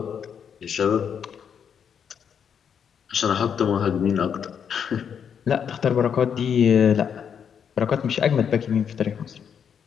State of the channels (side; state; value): right; quieter; 7.6 dB